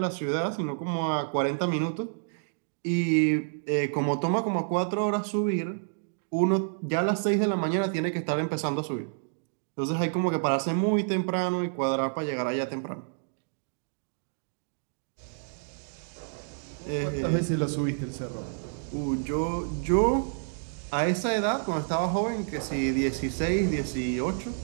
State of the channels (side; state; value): left; silent; digital silence